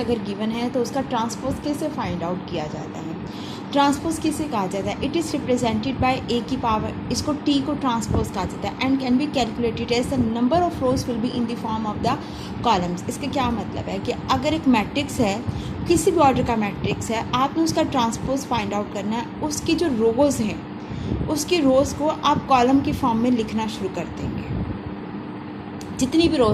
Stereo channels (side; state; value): both; identical; correlation 1.00